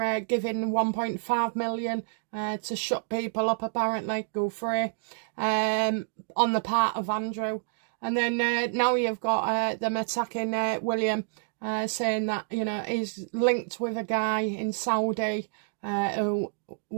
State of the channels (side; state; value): left; silent; digital silence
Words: giving 1.5 million to shut people up, apparently, go free, on the part of Andrew. And then now you've got them attacking William, saying that, you know, he's linked with a guy in Saudi who